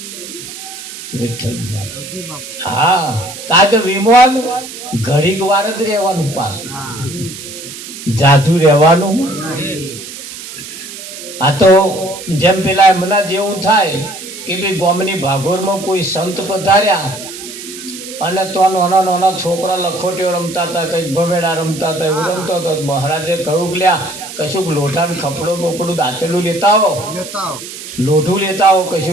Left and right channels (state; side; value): noise; right; hiss, 12 dB below the sound